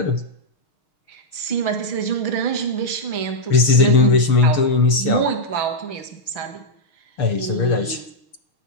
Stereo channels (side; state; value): right; late; 6.7 ms